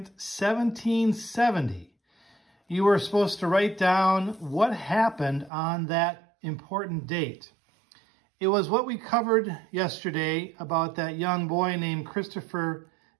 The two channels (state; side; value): drops out; left; at 5.5 s